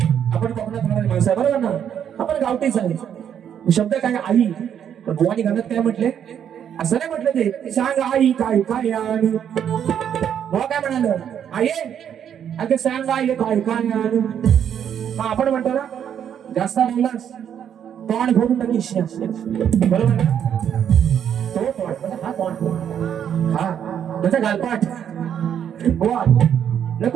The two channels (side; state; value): left; quieter; 8.9 dB